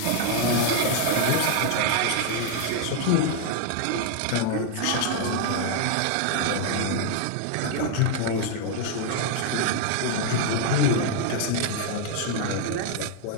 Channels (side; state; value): both; different; correlation 0.00